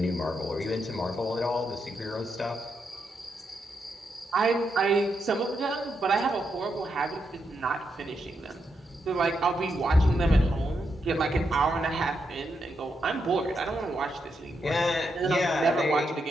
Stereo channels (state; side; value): normal; both; correlation 0.82